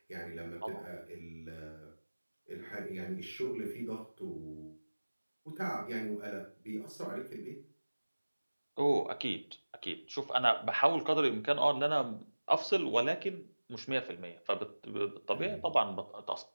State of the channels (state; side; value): inverted; both; correlation -1.00